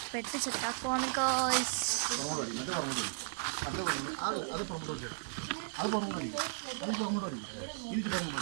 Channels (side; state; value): left; silent; digital silence